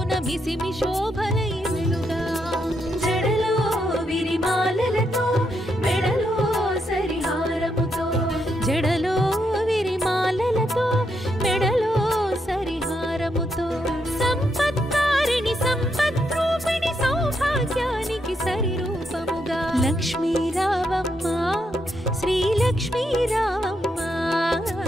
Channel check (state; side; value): normal; both; correlation 0.80